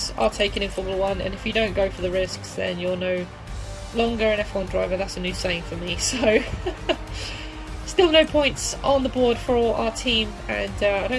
are taken in Formula 1, and if you don't go for the risks, then you're no longer an F1 driver. That's a new saying for me. So, still no points on the board for our team, and I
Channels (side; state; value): both; identical; correlation 1.00